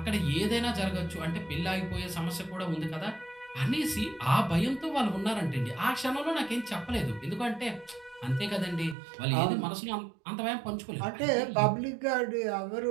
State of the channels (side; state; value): left; drops out; at 9.0 s